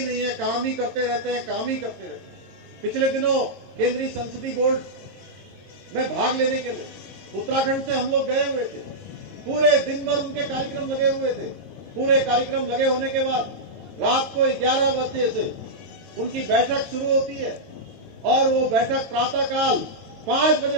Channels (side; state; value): left; late; 22 ms